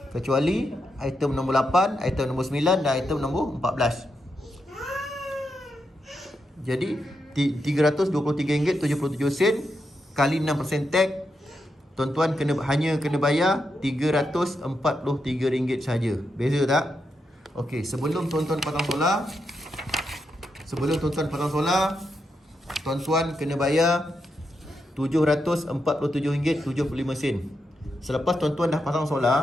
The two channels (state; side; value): normal; both; correlation 0.84